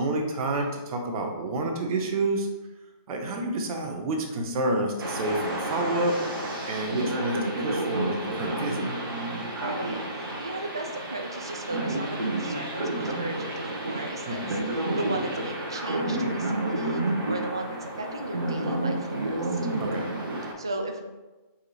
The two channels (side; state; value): both; inverted; correlation -0.51